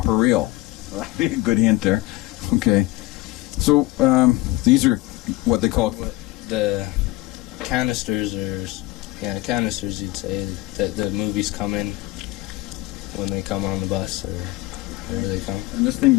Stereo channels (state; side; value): quieter; right; 19.0 dB